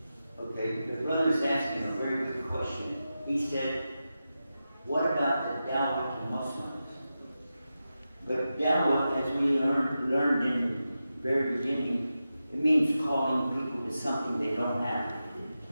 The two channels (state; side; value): inverted; both; correlation -0.91